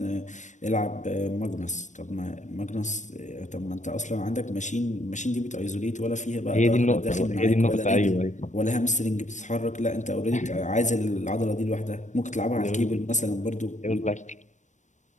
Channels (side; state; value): right; late; 0.35 ms